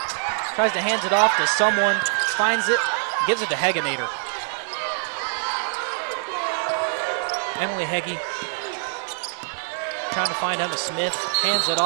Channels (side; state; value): left; silent; digital silence